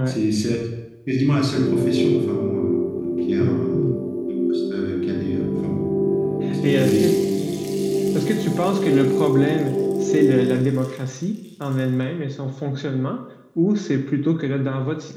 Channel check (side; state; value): both; identical; correlation 1.00